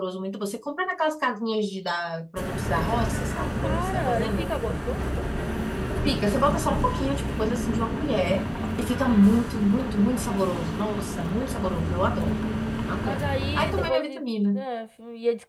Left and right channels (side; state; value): both; identical; correlation 1.00